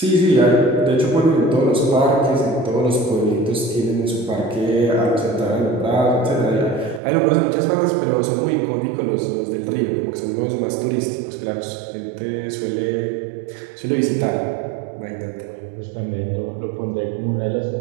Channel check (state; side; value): drops out; left; at 7.0 s